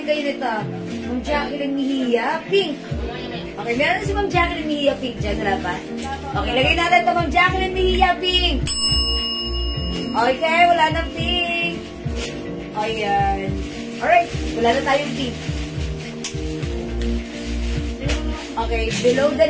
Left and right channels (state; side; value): identical; both; correlation 1.00